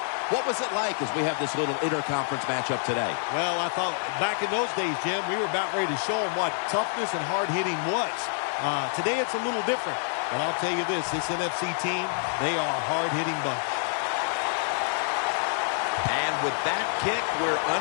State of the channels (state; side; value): silent; right; 60 dB below the other